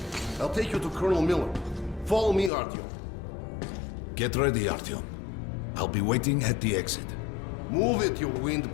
I'll take you to Colonel Miller. Follow me, Artyom. Get ready, Artyom. I'll be waiting at the exit. Move it, you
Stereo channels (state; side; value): drops out; right; at 2.5 s